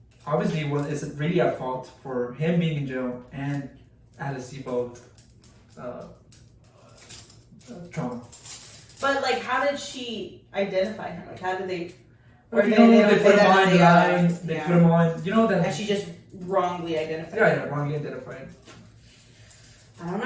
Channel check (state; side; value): identical; both; correlation 1.00